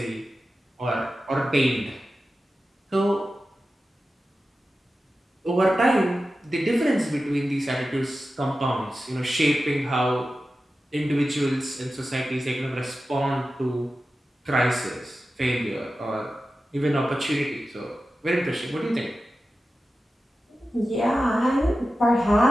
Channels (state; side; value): normal; both; correlation 0.93